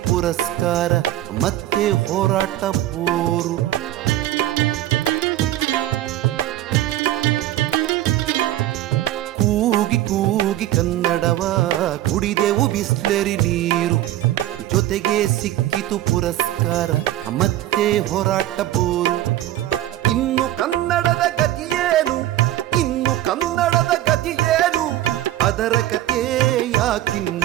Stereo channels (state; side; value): quieter; left; 14.0 dB